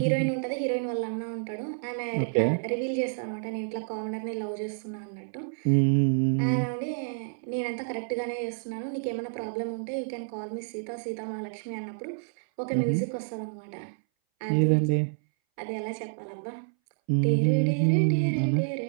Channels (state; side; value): silent; left; 59 dB below the other